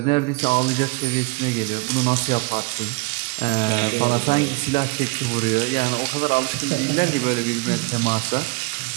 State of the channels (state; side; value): quieter; left; 27.9 dB